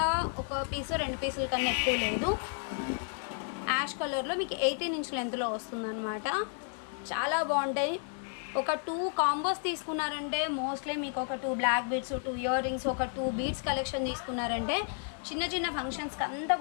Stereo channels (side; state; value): right; silent; 56 dB below the other